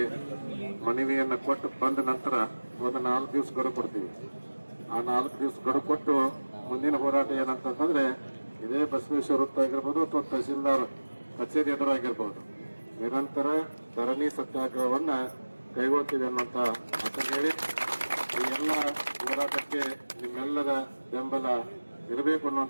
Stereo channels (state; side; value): inverted; both; correlation -1.00